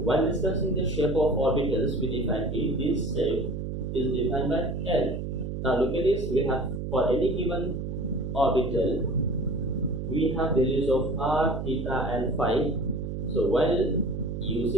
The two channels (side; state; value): right; noise; hum, 4 dB below the sound